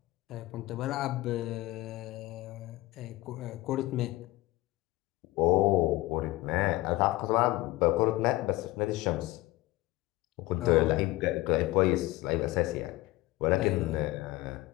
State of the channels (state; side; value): quieter; right; 19.0 dB